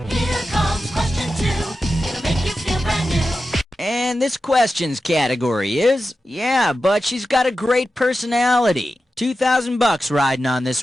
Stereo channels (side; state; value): both; normal; correlation 0.92